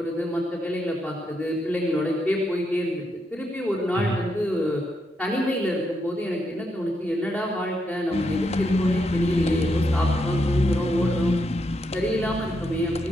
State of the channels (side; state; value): both; normal; correlation 0.81